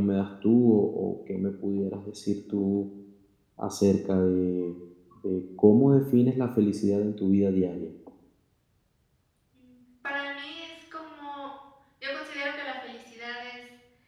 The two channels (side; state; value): both; identical; correlation 1.00